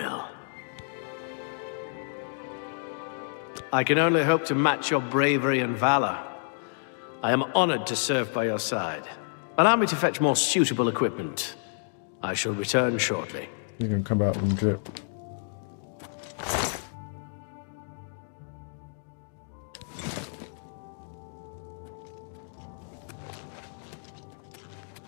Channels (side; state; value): right; silent; digital silence